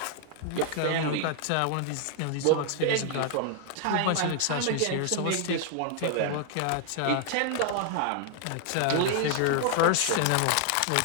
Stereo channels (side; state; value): both; different; correlation 0.00